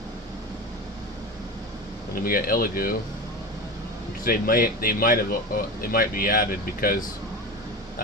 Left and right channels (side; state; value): both; normal; correlation 0.27